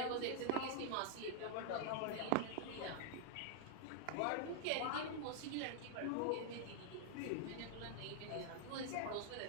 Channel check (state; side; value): different; both; correlation -0.01